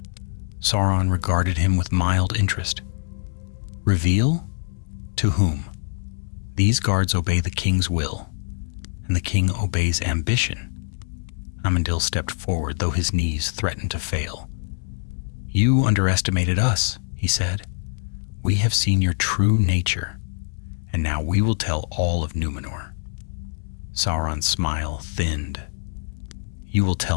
Sauron regarded him with mild interest. "Reveal? To whom? These guards obey the king's will, and the king obeys ambition." Amandil stepped forward, though his knees threatened to fail. "You underestimated us," he said. "We have seen your true nature, and now we will tell all of Numenor." Sauron's smile thinned. "You will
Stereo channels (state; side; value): silent; right; digital silence